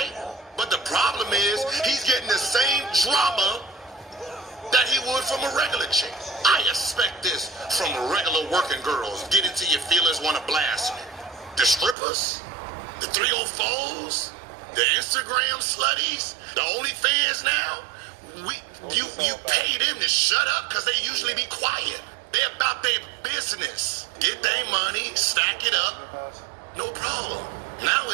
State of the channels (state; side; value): drops out; left; at 12.0 s